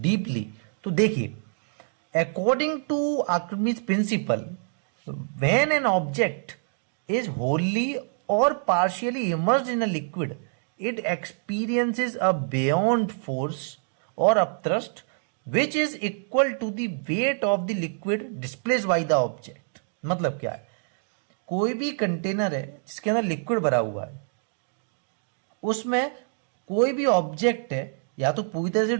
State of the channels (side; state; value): left; silent; digital silence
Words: deeply. तो देखिए, according to Archimedes principle, when an object is wholly or partially immersed in a liquid, it experiences a buoyant force or upthrust which is equal to the weight of the liquid displaced by the object. मतलब क्या है? कोई भी container है जिसके अंदर liquid भरा हुआ है, उसमें कोई भी ऑब्जेक्ट है या तो पूरी तरह से